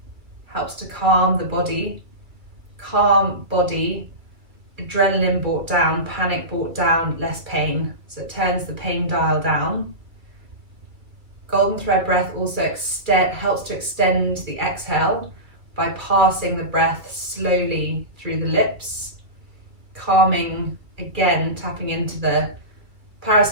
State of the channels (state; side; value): late; left; 2.3 ms